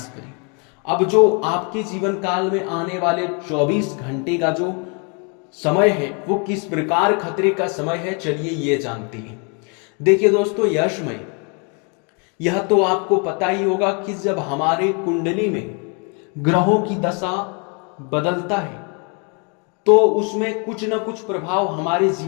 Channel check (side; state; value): right; quieter; 35.8 dB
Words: करें। अब जो आपके जीवन काल में आने वाले 24 घंटे का जो समय है वो किस प्रकार खतरे का समय है, चलिए ये जानते हैं। देखिए दोस्तों, यशमय, यह तो आपको पता ही होगा कि जब हमारे कुंडली में ग्रहों की दशा बदलता है तो उसमें कुछ न कुछ प्रभाव हमारे